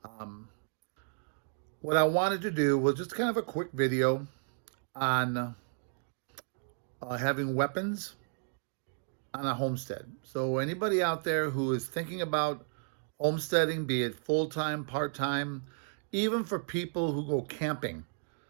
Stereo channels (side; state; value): left; silent; digital silence